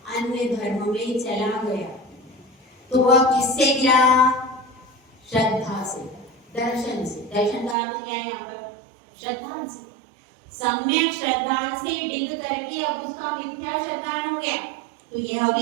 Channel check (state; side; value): drops out; left; at 7.8 s